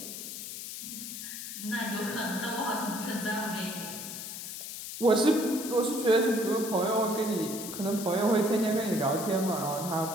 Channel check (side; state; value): left; noise; hiss, 8 dB below the sound